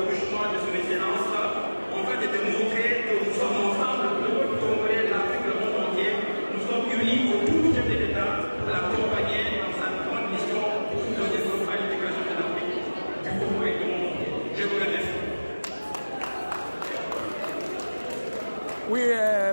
couchement de son excellence, en fait de démontrer que nous sommes ensemble, le peuple congolais, l'Afrique, le monde entier, nous sommes unis autour du chef de l'État pour l'accompagner dans sa grande mission de développement et l'intégration de l'Afrique, du Congo et du monde entier. Je vous remercie. Oui,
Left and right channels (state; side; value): inverted; both; correlation -1.00